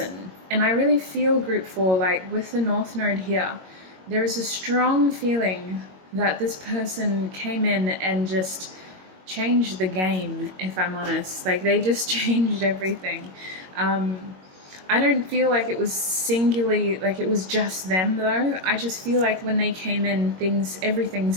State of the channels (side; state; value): left; late; 22 ms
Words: And I really feel group 4, like with the North Node here, there is a strong feeling that this person came in and just changed the game, if I'm honest. Like, they just changed everything. I don't feel like it was singularly, like it was just them though. I just feel like when they came in, everything